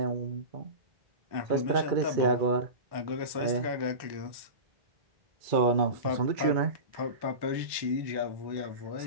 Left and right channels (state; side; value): late; left; 1.1 ms